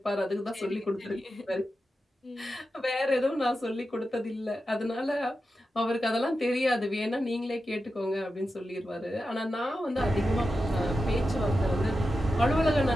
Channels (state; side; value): normal; both; correlation 0.91